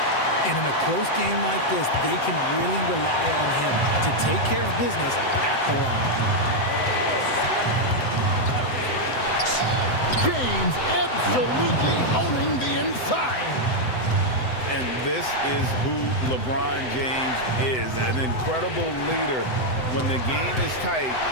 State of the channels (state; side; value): late; right; 7.9 ms